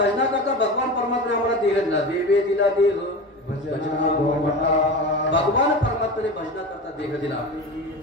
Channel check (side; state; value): both; normal; correlation 0.28